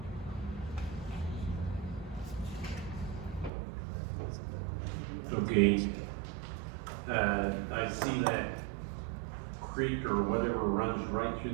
Okay, I see that creek or whatever runs right through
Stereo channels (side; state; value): left; drops out; at 3.5 s